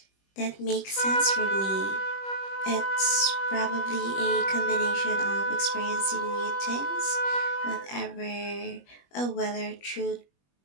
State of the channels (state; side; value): late; right; 21 ms